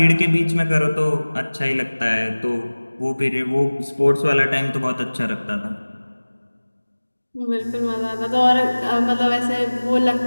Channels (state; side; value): inverted; both; correlation -1.00